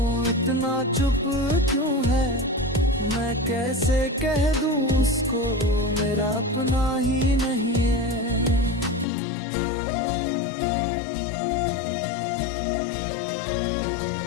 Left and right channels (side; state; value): right; drops out; at 9.1 s